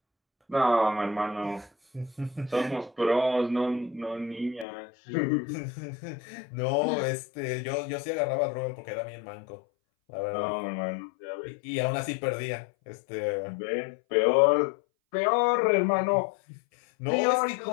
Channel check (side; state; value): right; drops out; at 4.7 s